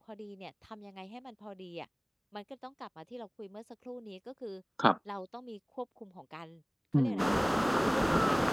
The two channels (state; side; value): identical; both; correlation 1.00